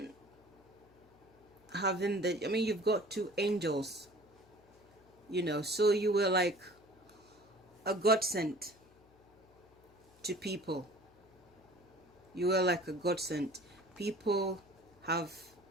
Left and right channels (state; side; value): noise; left; hum, 28 dB below the sound